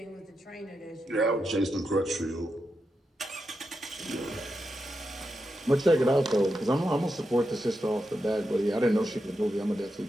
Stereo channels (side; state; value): both; normal; correlation 0.87